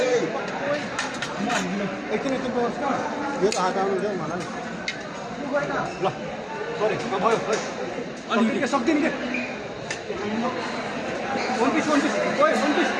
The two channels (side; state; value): both; identical; correlation 1.00